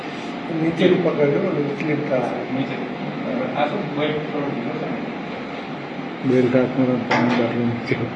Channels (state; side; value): identical; both; correlation 1.00